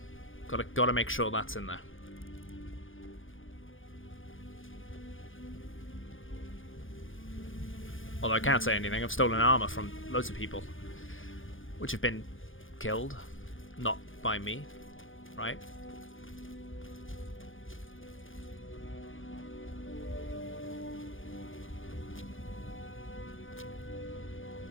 Gotta make sure that's in there. Although I can't say anything, I've stolen armor from loads of people, which have been killed, not by me, right?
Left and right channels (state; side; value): late; right; 0.58 ms